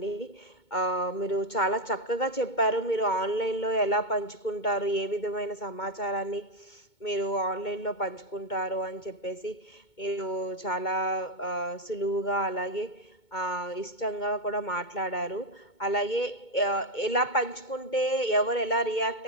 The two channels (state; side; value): late; right; 2.2 ms